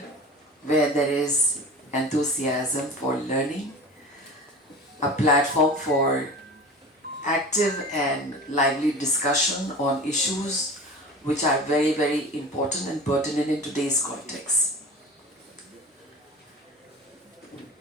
where there is enthusiasm for learning, a platform for active and lively discussion on issues which are very, very important and pertinent in today's context.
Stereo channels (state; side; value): normal; both; correlation 0.35